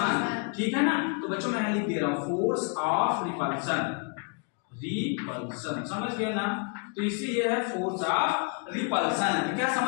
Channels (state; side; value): quieter; right; 36.7 dB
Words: ठीक है ना। तो बच्चों मैं लिख दे रहा हूँ फोर्स ऑफ रिपल्शन, रिपल्शन, समझ गए ना। तो इसे ये है फोर्स ऑफ रिपल्शन, क्या